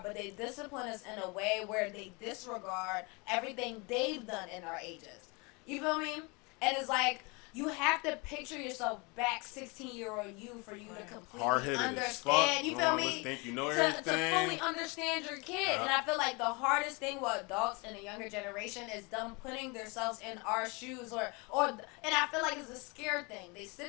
but they discipline us in a way where they disregard everything they've done in our ages. You feel me? And it's like, you have to picture yourself back 16-year-old you for you to completely Hard-headed as understand. fuck. You You feel don't me? always think you know to everything. fully understand your kid. Yeah. And I feel like the hardest thing with adults in the younger generation is them putting themselves in our shoes and I feel like it's a scared thing. They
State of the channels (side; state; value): right; quieter; 28.8 dB